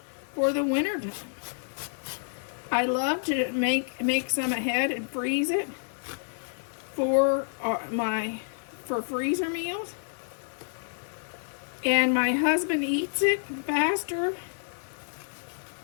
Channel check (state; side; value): silent; right; 59 dB below the other